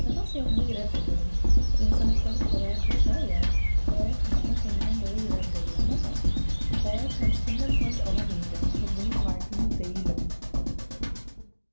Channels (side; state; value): both; inverted; correlation -1.00